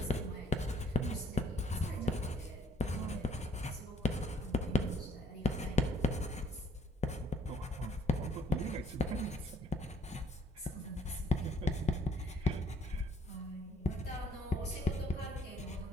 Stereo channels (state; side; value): normal; both; correlation 0.63